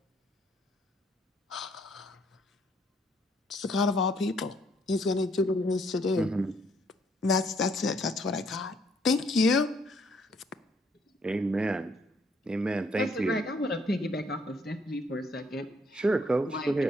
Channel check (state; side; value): normal; both; correlation 0.67